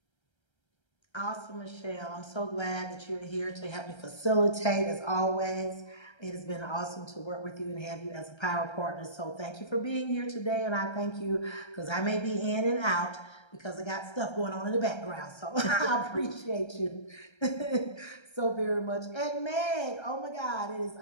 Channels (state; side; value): late; right; 1.3 ms